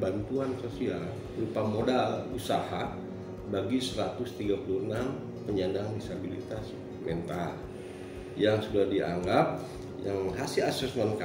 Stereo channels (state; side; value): identical; both; correlation 1.00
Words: sosial berupa modal usaha bagi 136 penyandang disabilitas mental yang sudah dianggap, yang hasil asesmen